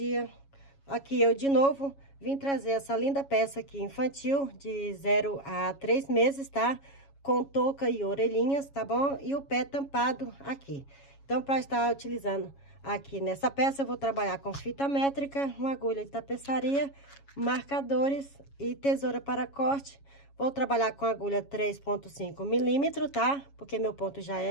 Aqui eu de novo vim trazer essa linda peça aqui infantil de 0 a 3 meses, tá? Com touca e orelhinhas, tá bom? E o pé tampado aqui. Então, para estar utilizando aqui nessa peça, eu vou trabalhar com fita métrica, uma agulha de tapeçaria, marcadores e tesoura para corte. Vou trabalhar com agulha 3,5 milímetros, tá? Porque meu ponto já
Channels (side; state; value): right; late; 7.2 ms